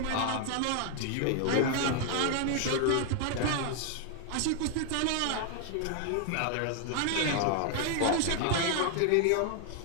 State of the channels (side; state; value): both; different; correlation 0.00